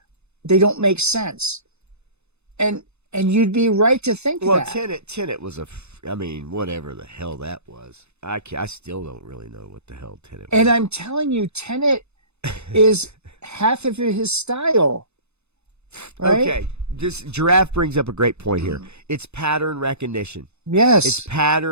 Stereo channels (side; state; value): left; late; 0.81 ms